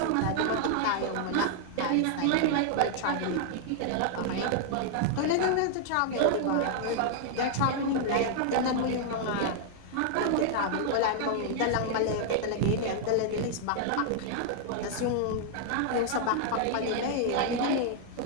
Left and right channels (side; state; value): both; different; correlation -0.01